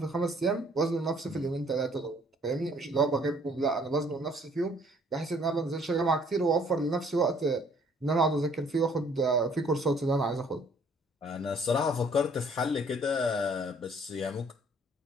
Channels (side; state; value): both; normal; correlation 0.60